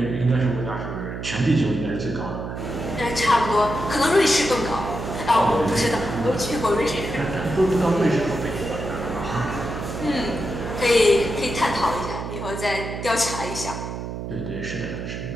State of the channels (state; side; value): noise; right; hum, 7 dB below the sound